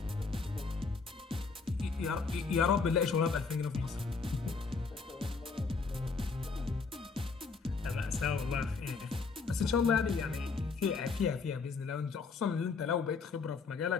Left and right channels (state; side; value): quieter; right; 4.7 dB